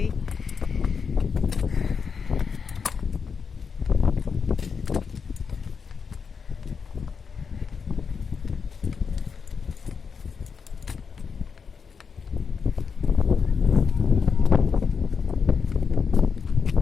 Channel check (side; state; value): right; quieter; 5.8 dB